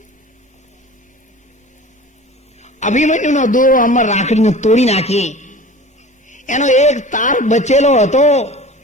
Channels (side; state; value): both; normal; correlation 0.40